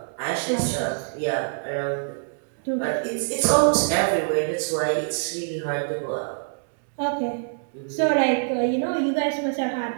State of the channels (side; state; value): left; silent; 62 dB below the other